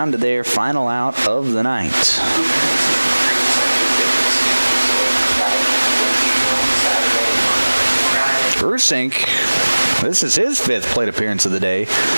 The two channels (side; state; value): both; inverted; correlation -1.00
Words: to their final out of the night. Rusink, this is his 5th plate appearance of the day.